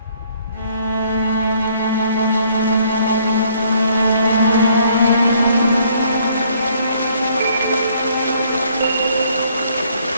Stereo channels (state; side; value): inverted; both; correlation -0.64